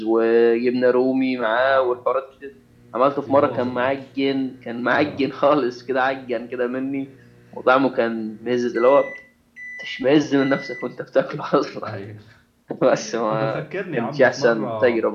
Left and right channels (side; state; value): both; identical; correlation 1.00